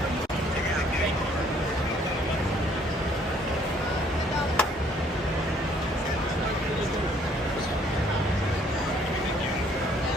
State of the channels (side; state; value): both; normal; correlation 0.62